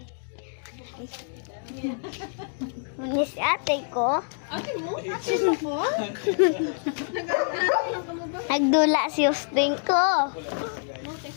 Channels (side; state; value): right; silent; 61 dB below the other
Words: ate ko. Ate mo? Ate mo po? Nagdula si Austin ko.